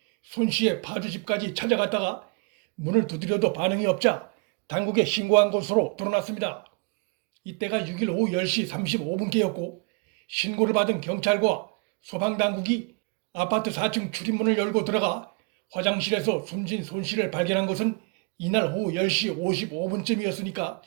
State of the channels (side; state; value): left; quieter; 33.5 dB